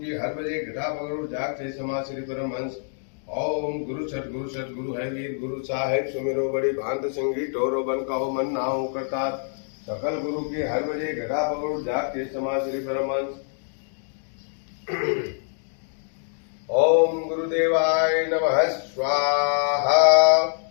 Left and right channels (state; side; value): silent; right; digital silence